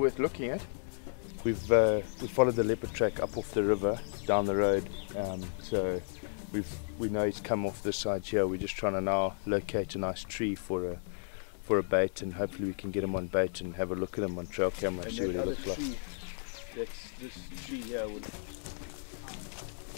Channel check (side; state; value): right; silent; 56 dB below the other